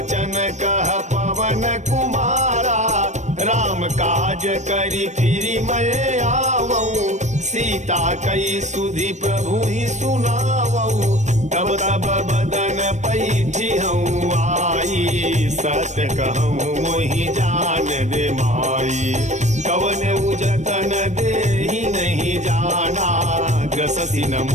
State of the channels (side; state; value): left; late; 0.34 ms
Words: कह पवन कुमारा राम काज करी फिरी मैं आवऊं सीता कई सुधि प्रभु ही सुनावऊं तब तब बदन पैठी हूँ आई सत्य कहूँ मोहि जान दे माई कवन उजतन दे ही नहीं जाना ग्रससी न